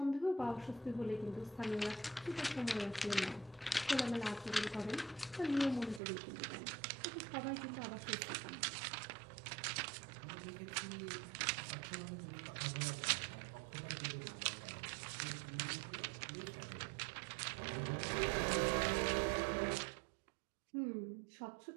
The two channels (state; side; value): drops out; left; at 6.0 s